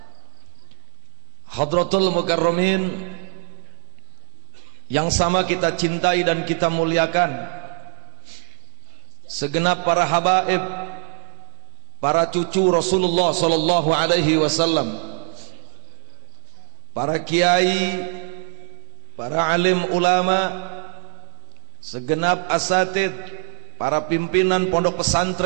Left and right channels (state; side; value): silent; left; 65 dB below the other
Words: Hadratul Mukarramin yang sama kita cintai dan kita muliakan, segenap para habaib, para cucu Rasulullah sallallahu alaihi wasallam, para kiai, para alim ulama, segenap asatid, para pimpinan pondok